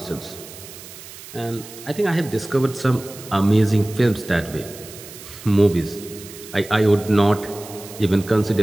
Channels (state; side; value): noise; right; hiss, 16 dB below the sound